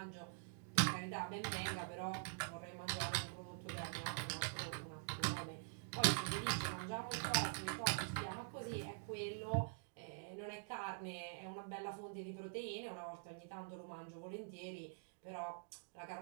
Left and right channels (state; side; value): silent; left; digital silence